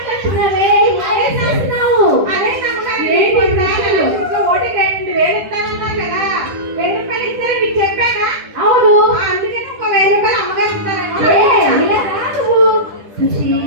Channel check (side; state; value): left; late; 10 ms